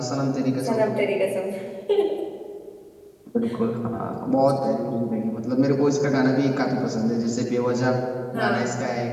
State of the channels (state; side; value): identical; both; correlation 1.00